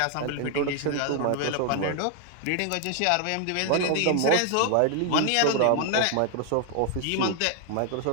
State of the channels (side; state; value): both; different; correlation 0.00